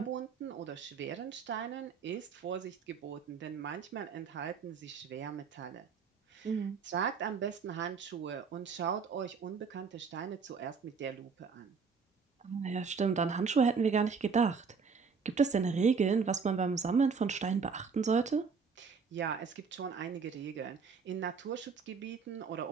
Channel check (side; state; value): left; quieter; 5.5 dB